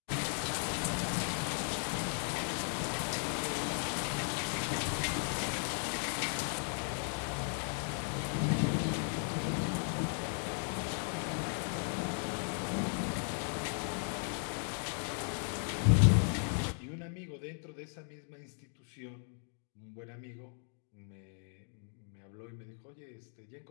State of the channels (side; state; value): right; silent; 53 dB below the other